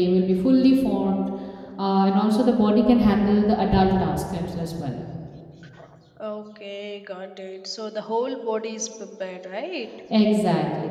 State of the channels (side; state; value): both; identical; correlation 1.00